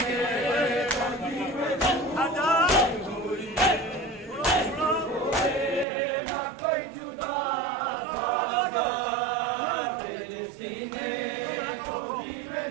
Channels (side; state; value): left; drops out; at 5.9 s